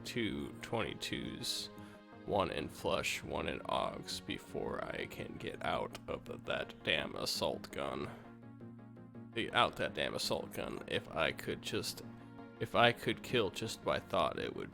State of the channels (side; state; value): both; identical; correlation 1.00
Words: 2 22s, 1 in flush, 1 in augs before I can get out of that damn assault gun. If I could kill just by thought, it